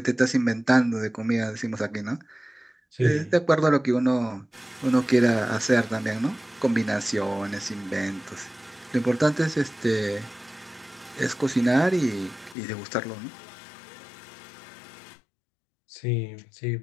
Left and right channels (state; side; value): drops out; right; at 12.6 s